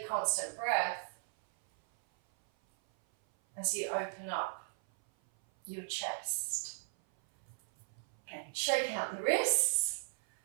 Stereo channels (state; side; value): silent; left; 54 dB below the other